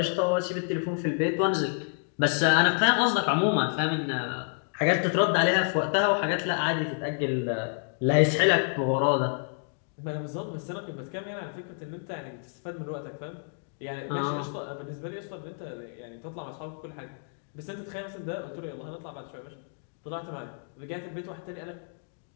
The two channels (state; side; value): silent; right; digital silence